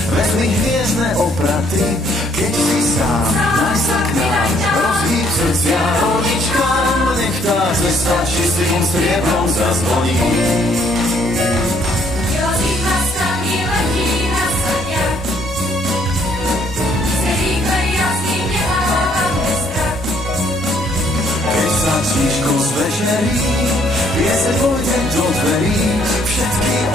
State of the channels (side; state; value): both; normal; correlation 0.65